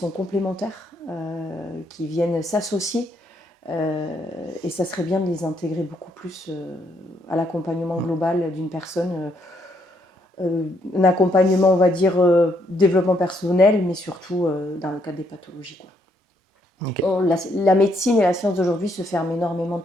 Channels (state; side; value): normal; both; correlation 0.73